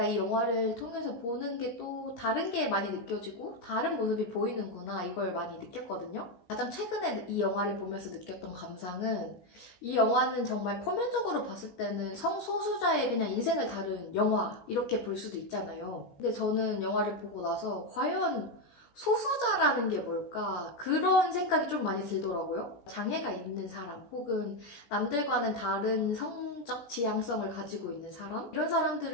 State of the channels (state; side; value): late; right; 17 ms